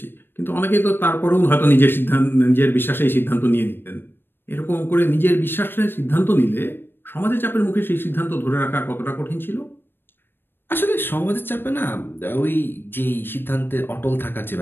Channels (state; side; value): late; right; 0.099 ms